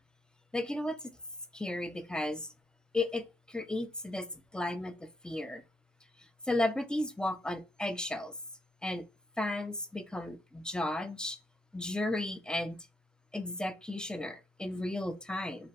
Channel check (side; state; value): both; normal; correlation 0.80